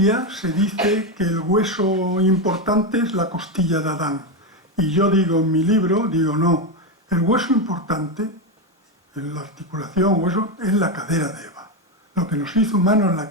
se dice que el hueso importante es la costilla de Adán. Y yo digo en mi libro, no, el hueso importante, en la articulación, hueso, es la cadera de Eva. Lo que nos hizo humanos es la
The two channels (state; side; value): normal; both; correlation 0.10